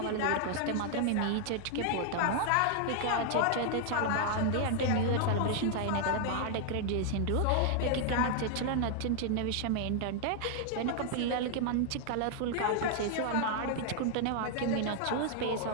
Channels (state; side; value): different; both; correlation 0.00